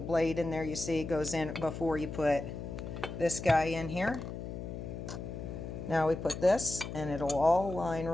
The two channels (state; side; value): noise; left; hum, 7 dB below the sound